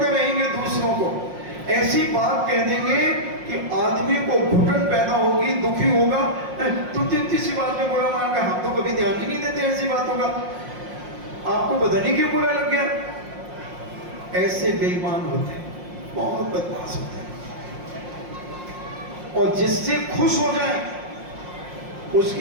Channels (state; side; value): late; left; 5.6 ms